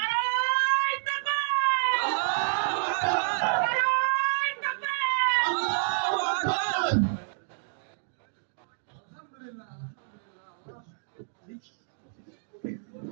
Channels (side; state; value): left; silent; digital silence